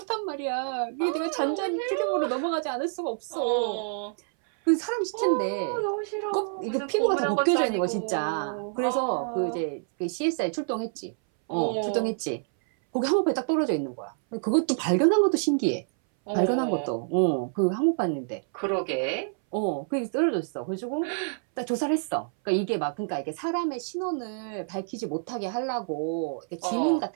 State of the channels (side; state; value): left; silent; 60 dB below the other